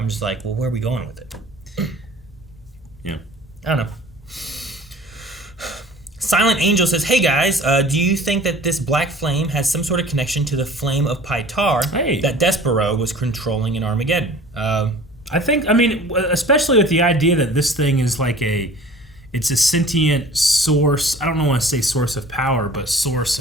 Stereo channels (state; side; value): normal; both; correlation 0.46